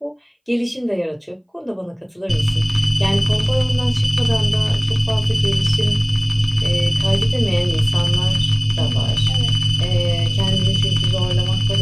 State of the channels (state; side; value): identical; both; correlation 1.00